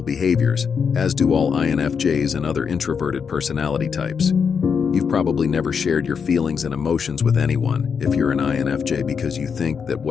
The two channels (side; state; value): right; quieter; 6.4 dB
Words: behaviors, as do all INFJs and other introverted personality types. You've probably never shared your feelings and emotions with anyone if you're an INFJ because you think that